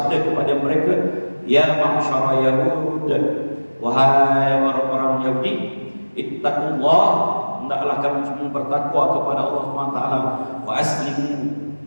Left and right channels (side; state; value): both; inverted; correlation -1.00